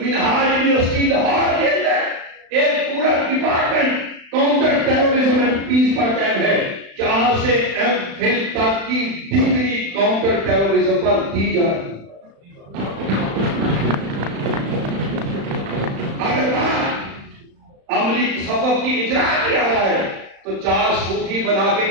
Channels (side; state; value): left; late; 35 ms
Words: یونیورسٹی لاہور کے اندر ایک پورا department counter terrorism and peace پر قائم ہے، جہاں سے ایم فل تک کی ڈگری کاؤنٹر ٹیررزم پر دی جا رہی ہے۔ اگر بات عملی تصوف کی اجرا کیا جائے تو 4 صوفی بنا کے